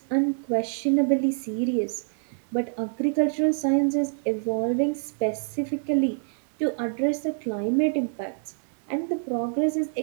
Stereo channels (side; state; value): left; silent; digital silence